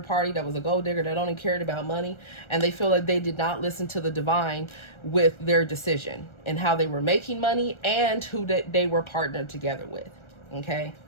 party that was a gold digger that only cared about money, and they feel like they did not listen to the divine with their decision and how they were making money and who they were partnered together with, okay?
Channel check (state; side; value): late; right; 1.3 ms